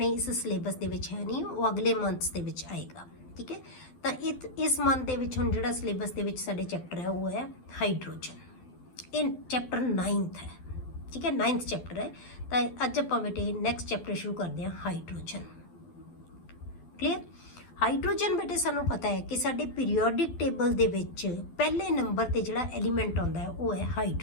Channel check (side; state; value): right; late; 12 ms